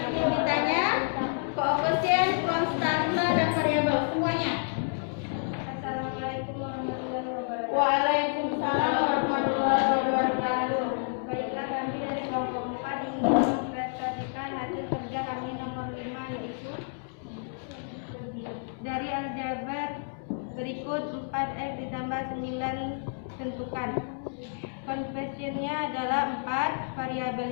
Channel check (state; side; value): silent; right; digital silence